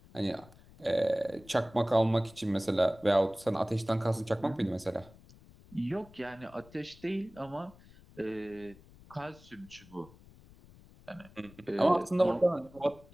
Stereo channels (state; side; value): noise; left; rumble, 23 dB below the sound